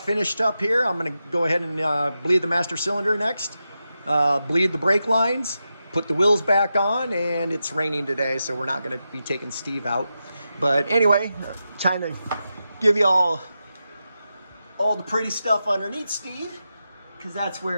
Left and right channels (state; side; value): inverted; both; correlation -0.89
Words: finished up here. I'm going to go ahead and bleed the master cylinder next, bleed the brake lines, put the wheels back on, and it's raining today, so we're not going to be taking Steve out. But anyway, trying to give you all the pretty stuff underneath Steve, because that's